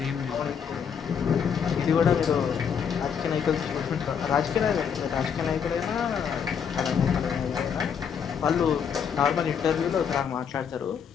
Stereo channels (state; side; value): quieter; right; 7.3 dB